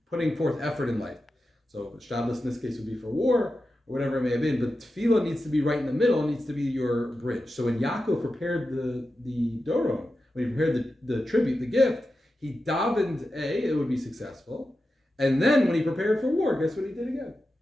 putting forth effort in life. So ishtadlus in this case would be for war, or whatever it may have been, but tefilah needs to be right in the middle, needs to be your bridge. So when Yaakov prepared the Doron, when he prepared the tribute, the gift, he davened it would be successful. And then when he prepared for war, guess what he did again?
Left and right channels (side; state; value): both; normal; correlation 0.91